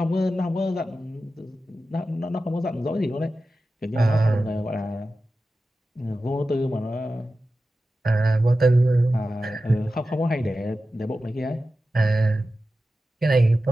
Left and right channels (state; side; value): normal; both; correlation 0.93